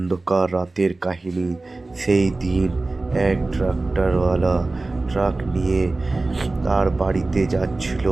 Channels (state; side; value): quieter; left; 3.2 dB